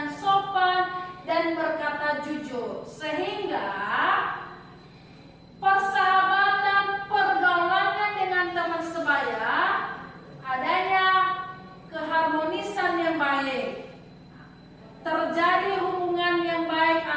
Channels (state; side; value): identical; both; correlation 1.00